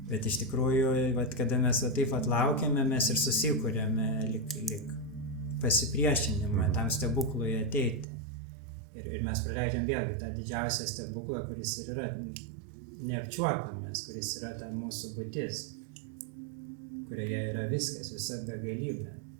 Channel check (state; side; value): drops out; left; at 8.1 s